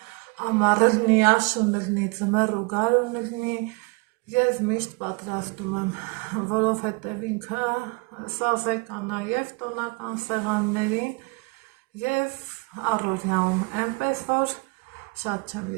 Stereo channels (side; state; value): left; quieter; 28.1 dB